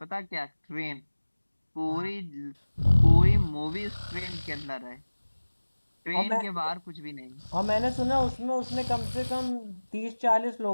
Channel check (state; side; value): inverted; both; correlation -1.00